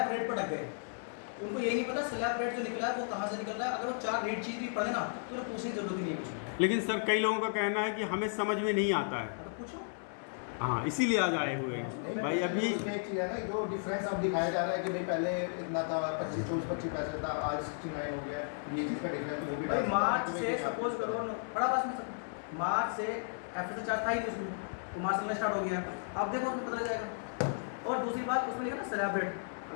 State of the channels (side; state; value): right; silent; 55 dB below the other